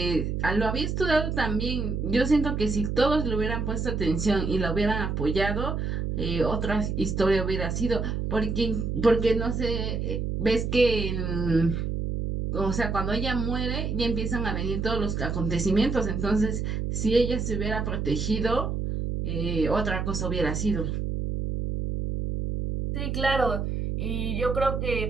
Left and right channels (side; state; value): right; noise; hum, 1 dB below the sound